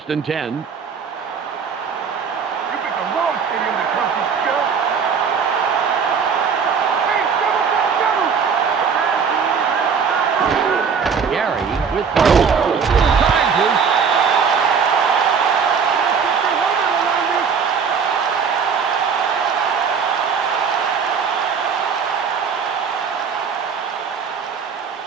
and 10. With charges.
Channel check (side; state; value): left; quieter; 6.2 dB